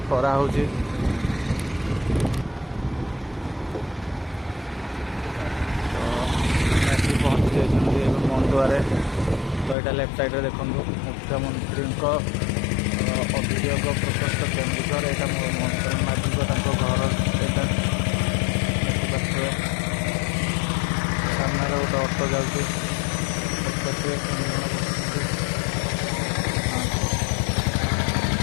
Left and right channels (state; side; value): drops out; right; at 9.8 s